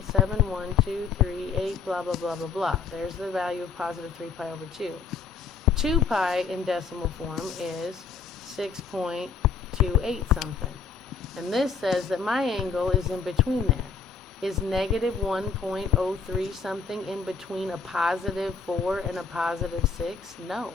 blah, blah, blah, blah, blah. There's the value of positive 3 pi over 2. 2 pi in decimal form is 6.28 something. And this says that my angle is in between there. Is negative 1.03 something in between a positive 4 and a positive 6? No,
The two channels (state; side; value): quieter; right; 5.4 dB